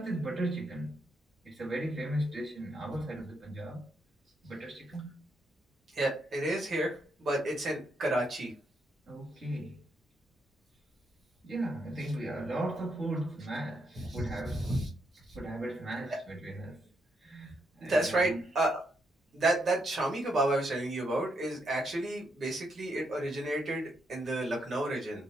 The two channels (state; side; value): normal; both; correlation 0.79